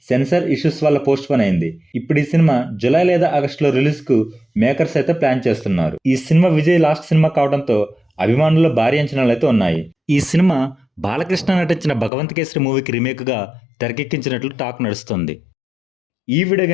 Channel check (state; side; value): drops out; right; at 12.1 s